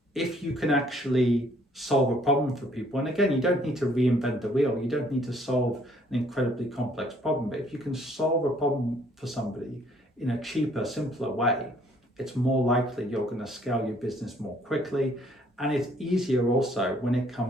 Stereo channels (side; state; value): both; normal; correlation 0.62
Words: if you can actually solve a problem for people, and again, you don't need to reinvent the wheel, you don't need to solve an incredibly complex problem, but if you can solve a problem for somebody in a cheaper, simpler way, it's more likely you're going to scale your business more quickly. And it's easier also when it